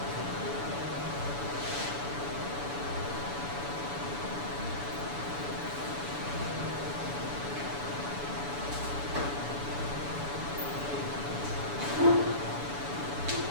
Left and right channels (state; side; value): late; left; 7.0 ms